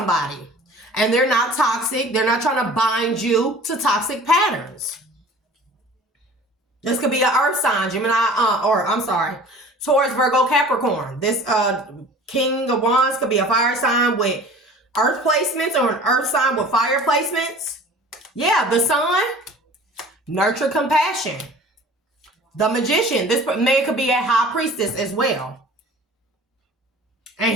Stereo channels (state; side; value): normal; both; correlation 0.44